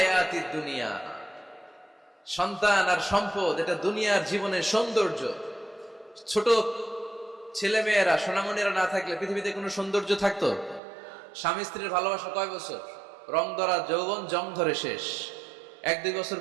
দুনিয়া। সন্তান আর সম্পদ এটা দুনিয়ার জীবনের সৌন্দর্য। ছোট ছেলে মেয়েরা, সোনামণিরা না থাকলে পৃথিবীতে কোনো সৌন্দর্য থাকতো? স্বামী স্ত্রীর ভালোবাসা কয় বছর? রং ধরা যৌবন, জং ধরে শেষ। 1-2 বছর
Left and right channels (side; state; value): left; drops out; at 10.8 s